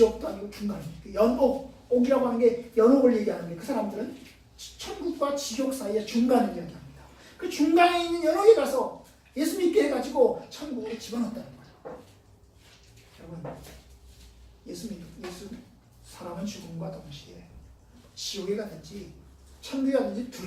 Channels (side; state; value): both; identical; correlation 1.00